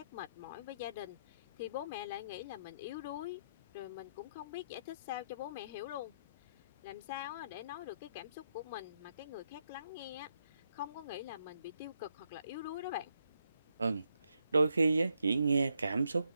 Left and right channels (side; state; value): both; inverted; correlation -0.78